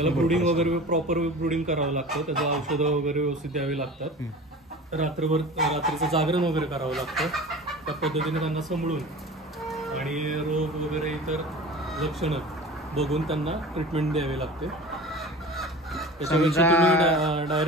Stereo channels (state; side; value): normal; both; correlation 0.37